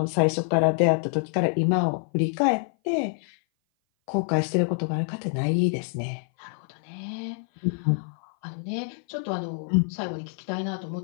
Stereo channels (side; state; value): right; silent; 57 dB below the other